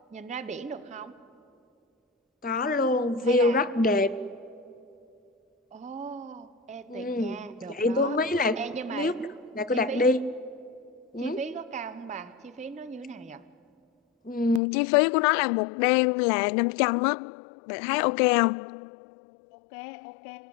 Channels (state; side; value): drops out; right; at 14.6 s